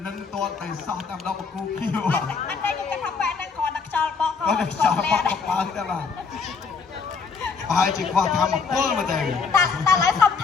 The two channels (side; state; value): right; quieter; 5.2 dB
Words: នឹងតតតែសោះតាមដងបកគូខៀវអត់តែខ្ញុំគិតថាបែរហ្នឹងគ្រាន់តែខ្យល់បក់ក៏ខ្យល់បក់បើតែបាទហើយជាខ្វះធម្មពលមកតែតែឡើយសុំ